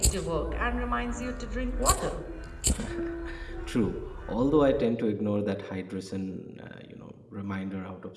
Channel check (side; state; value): both; identical; correlation 1.00